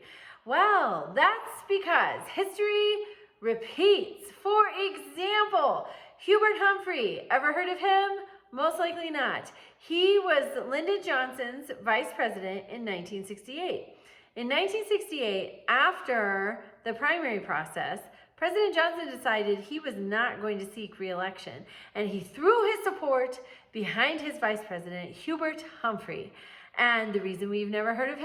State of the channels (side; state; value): both; identical; correlation 1.00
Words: Well, that's because history repeats. For example, Hubert Humphrey, ever heard of him? Most likely not. He was Lyndon Johnson's vice president in 1968. In 1968, after the primary process, President Johnson decided he was not going to seek re-election, and he threw his support behind his vice president, Hubert Humphrey. And the reason we've never heard of